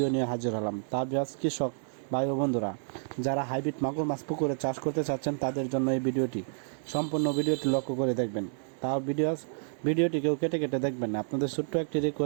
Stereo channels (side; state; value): left; silent; digital silence